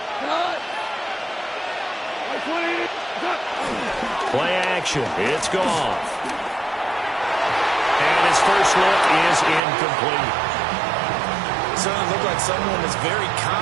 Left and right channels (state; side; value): drops out; left; at 9.6 s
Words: Play action. It's gone. And his first look is incomplete. Certainly looked like someone was very